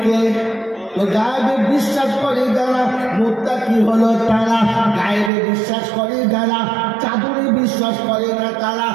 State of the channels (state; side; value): drops out; left; at 5.3 s